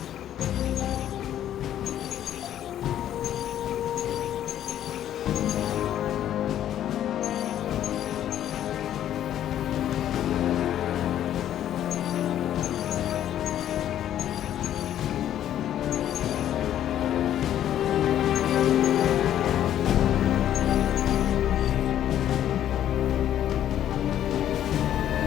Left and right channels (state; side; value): quieter; right; 11.2 dB